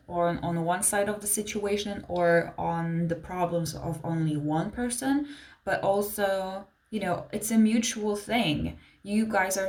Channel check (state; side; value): identical; both; correlation 1.00